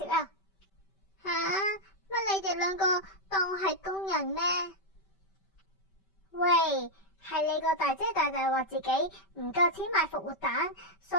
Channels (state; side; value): late; right; 5.2 ms